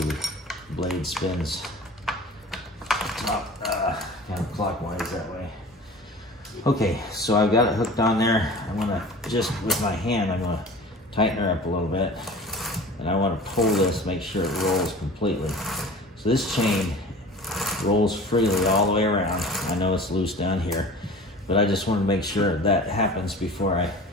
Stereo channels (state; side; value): normal; both; correlation 0.40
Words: blade spins top counterclockwise that way. Okay, so I've got it hooked on there. I'm gonna just with my hand, I'm gonna tighten her up a little bit, and I want to pull this, make sure it rolls completely. So this chain rolls freely all the way around. I know it's loose down here, but I just want to make sure that happens before I